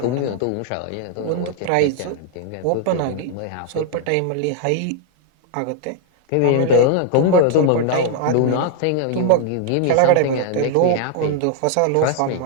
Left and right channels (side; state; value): both; different; correlation 0.00